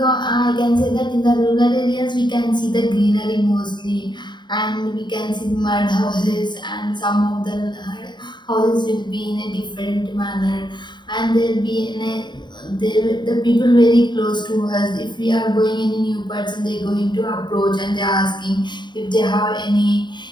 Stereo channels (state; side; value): late; right; 0.22 ms